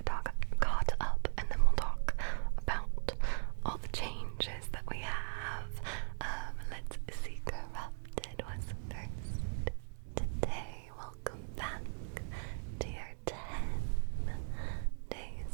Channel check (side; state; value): left; silent; digital silence